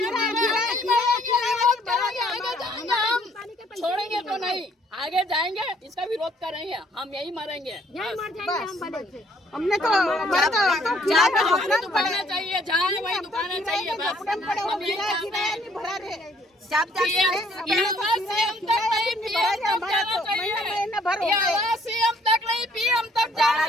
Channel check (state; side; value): normal; both; correlation 0.63